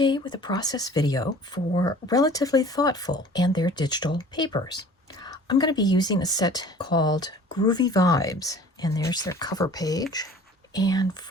with a process video for Relatively Thoughtful and their digital papers. I'm going to be using a set called Groovy Vibes, and there's their cover page. And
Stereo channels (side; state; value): both; normal; correlation 0.47